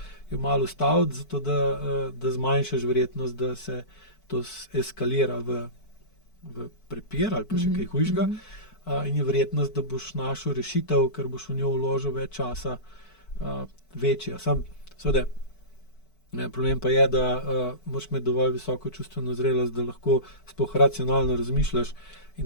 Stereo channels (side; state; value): right; late; 4.5 ms